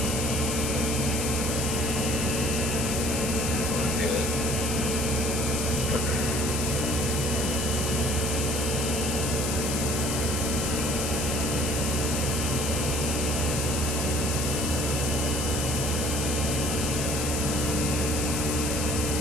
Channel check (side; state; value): left; noise; hiss, 2 dB below the sound